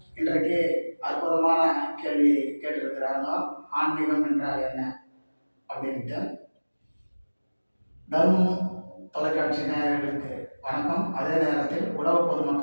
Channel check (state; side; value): inverted; both; correlation -1.00